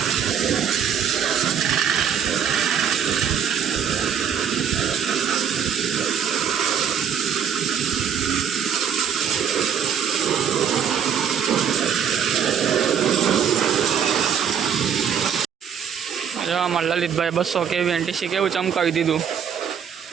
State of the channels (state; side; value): quieter; left; 7.9 dB